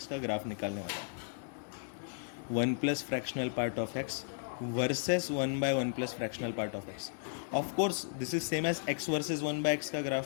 का ग्राफ निकालने वाला हूँ। 1 plus fractional part of x versus 1 by 1 plus fractional part of x. Of course this is same as x versus 1 by x का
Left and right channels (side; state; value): right; silent; digital silence